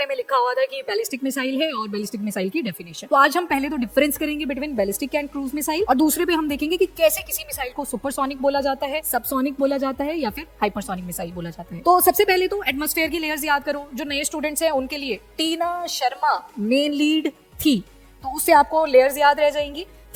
में लिखा हुआ था कि बैलिस्टिक मिसाइल है और बैलिस्टिक मिसाइल की डेफिनेशन। तो आज हम पहले तो डिफरेंस करेंगे between ballistic and cruise missile, और दूसरे पे हम देखेंगे कि कैसे किसी मिसाइल को सुपरसोनिक बोला जाता है, सबसोनिक बोला जाता है या फिर हाइपरसोनिक मिसाइल बोला जाता है। तो सबसे पहले तो एटमॉस्फेयर की लेयर्स याद करो। जो नए स्टूडेंट्स हैं उनके लिए टीना शर्मा मेन लीड थी, तो उससे आपको लेयर्स याद रह जाएंगी।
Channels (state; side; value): identical; both; correlation 1.00